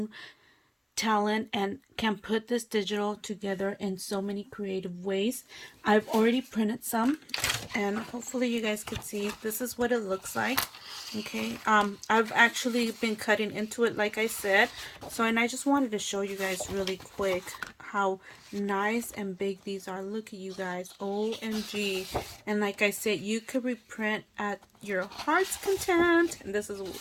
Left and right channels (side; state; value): both; identical; correlation 1.00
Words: talent and can put this digital together in so many creative ways. I've already printed some, and hopefully you guys can see. This is what it looks like. Okay, I've actually been cutting into it, like I said. So, and I just wanted to show you guys really quick how nice and big these are. Look at you guys, OMG. And like I said, you could reprint at your heart's content. And this is a